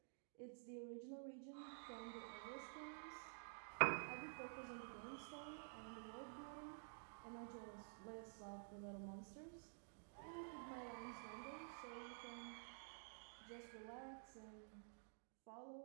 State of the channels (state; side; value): silent; left; digital silence